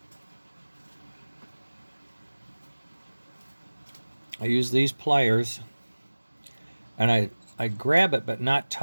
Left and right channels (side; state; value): both; inverted; correlation -1.00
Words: I use these pliers and I grab it but not